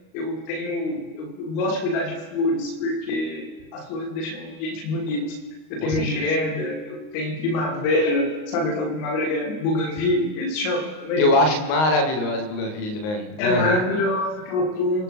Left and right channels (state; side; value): late; right; 38 ms